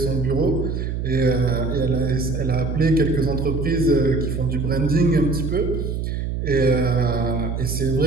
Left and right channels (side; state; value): right; noise; hum, 3 dB below the sound